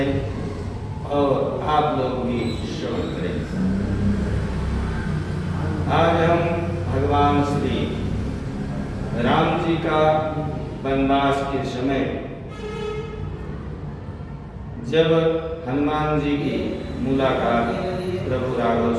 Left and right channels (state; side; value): identical; both; correlation 1.00